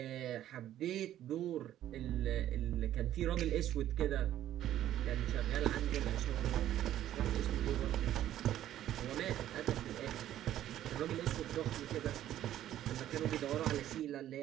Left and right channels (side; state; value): left; quieter; 12.3 dB